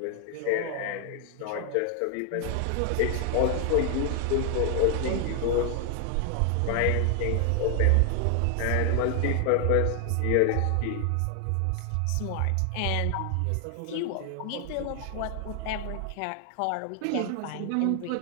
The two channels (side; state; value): both; different; correlation 0.00